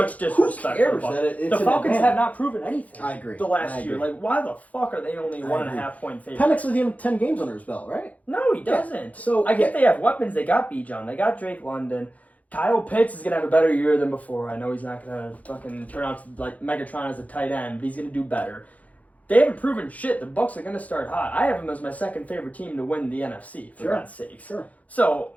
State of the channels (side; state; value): right; late; 0.071 ms